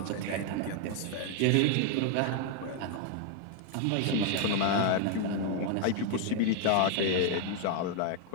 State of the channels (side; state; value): both; different; correlation 0.00